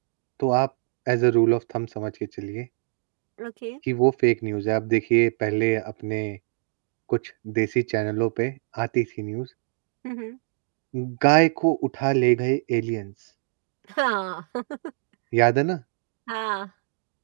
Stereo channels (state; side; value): silent; left; digital silence